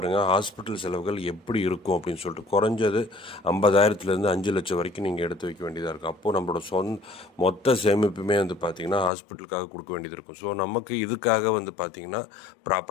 ஹாஸ்பிட்டல் செலவுகள் எப்படி இருக்கும் அப்படின்னு சொல்லிட்டு. குறைஞ்சது 50,000லேருந்து 5 லட்சம் வரைக்கும் நீங்கள் எடுத்து வைக்க வேண்டியதாக இருக்கும். அப்போது நம்மளோட மொத்த சேமிப்புமே பார்த்திங்கன்னா ஹாஸ்பிட்டலுக்காக கொடுக்க வேண்டியது இருக்கும். ஸோ நமக்கு இதுக்காக பார்த்திங்கன்னா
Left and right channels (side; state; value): right; drops out; at 9.1 s